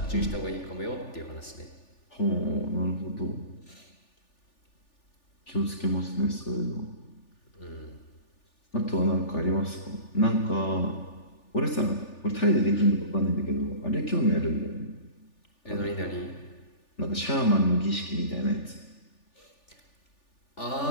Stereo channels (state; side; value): late; right; 3.4 ms